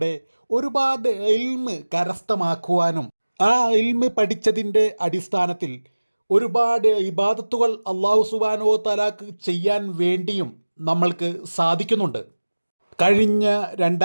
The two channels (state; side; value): inverted; both; correlation -1.00